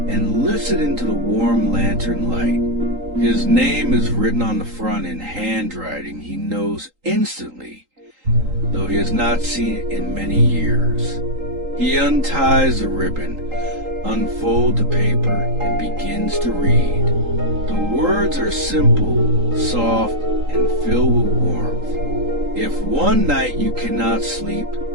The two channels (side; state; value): left; late; 3.8 ms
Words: and lifts it into the warm lantern light. His name is written on the front in handwriting he knows instantly, though he has not seen it in many years. He unties the ribbon, unfolds the paper, and begins to read. The words are simple, soft, and filled with warmth. If one night you cannot sleep,